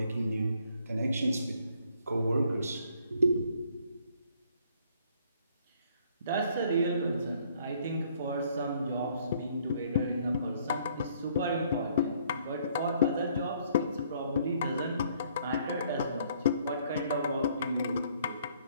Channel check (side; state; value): both; inverted; correlation -0.64